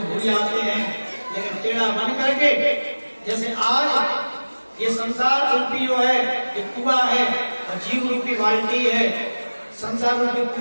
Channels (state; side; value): inverted; both; correlation -1.00